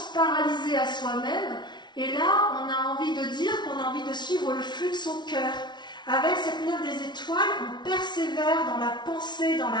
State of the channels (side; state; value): right; late; 0.21 ms